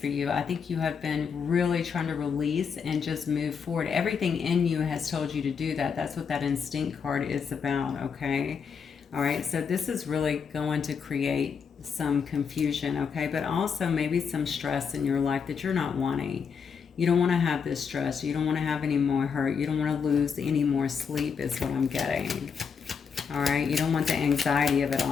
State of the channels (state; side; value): quieter; right; 6.3 dB